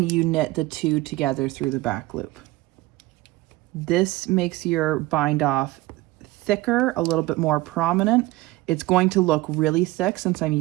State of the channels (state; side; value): quieter; left; 19.2 dB